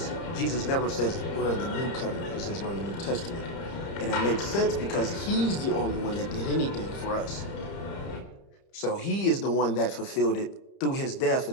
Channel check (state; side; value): late; right; 30 ms